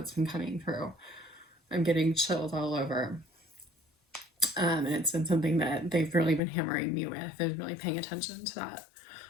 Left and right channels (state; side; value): drops out; right; at 6.4 s